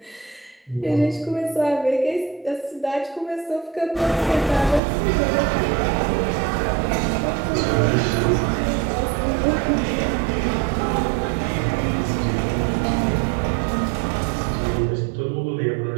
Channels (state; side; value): drops out; left; at 4.8 s